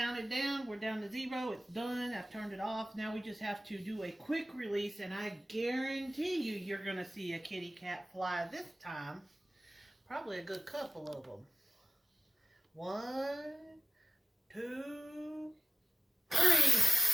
down. We're down to 0. It's done. I've turned it off. Now we just have to do a quick release, and I guarantee you you're going to see a kitty cat fly this time. Probably a good couple of them. 1, 2, 3.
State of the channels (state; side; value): normal; both; correlation 0.94